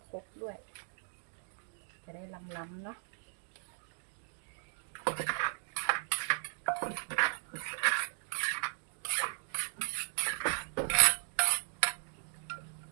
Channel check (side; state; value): left; silent; digital silence